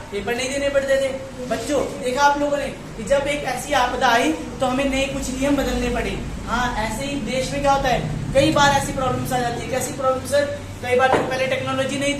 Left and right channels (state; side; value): identical; both; correlation 1.00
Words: पेपर नहीं देने पड़ते थे। बच्चों देखा आप लोगों ने कि जब एक ऐसी आपदा आई तो हमें नए कुछ नियम बदलने पड़े। हाँ, ऐसे ही देश में क्या होता है, कई बार ऐसी प्रॉब्लम्स आ जाती है। कैसी प्रॉब्लम सर? कई बार पहले टेक्नोलॉजी नहीं